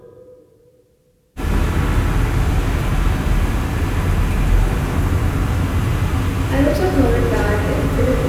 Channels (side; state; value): both; identical; correlation 1.00